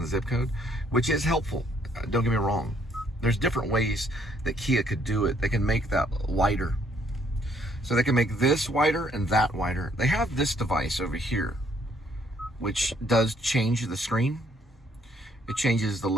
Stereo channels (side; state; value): both; normal; correlation 0.67